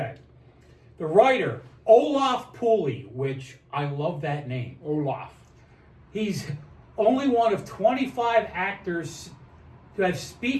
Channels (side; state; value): both; identical; correlation 1.00